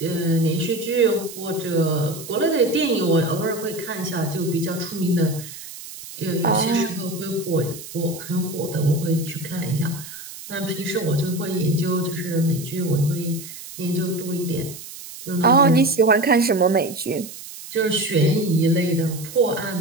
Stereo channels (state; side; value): noise; right; hiss, 13 dB below the sound